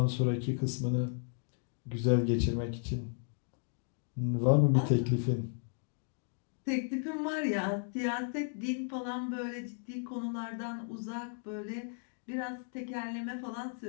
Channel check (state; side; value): silent; right; 55 dB below the other